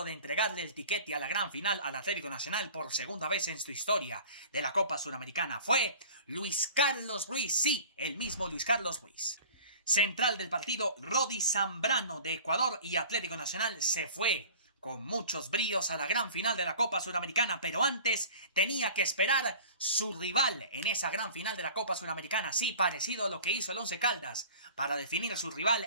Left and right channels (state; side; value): inverted; both; correlation -0.43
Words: de entregarle el tiquete a la gran final al Atlético Nacional por segunda vez en su historia de la Copa Suramericana fue Luis Carlos Ruiz, sí, el mismo Luis Carlos Ruiz. Central del partido, Rodi Zambrano de Ecuador, y Atlético Nacional se fue con muchos bríos a la gran final de la Copa Suramericana, pero antes tenía que esperar su rival en esa gran final de la Copa Suramericana, sí, parecido a lo que hizo el Once Caldas para definir su rival